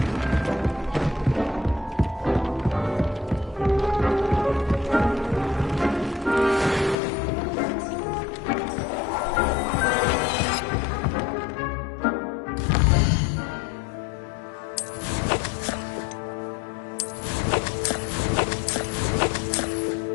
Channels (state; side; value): drops out; right; at 7.0 s